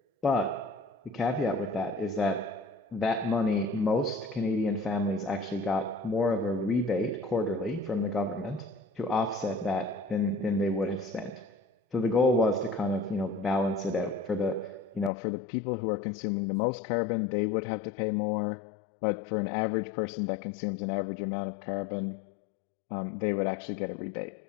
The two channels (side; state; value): right; drops out; at 15.1 s